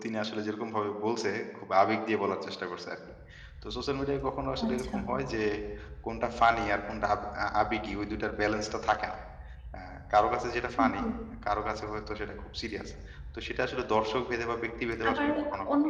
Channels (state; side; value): identical; both; correlation 1.00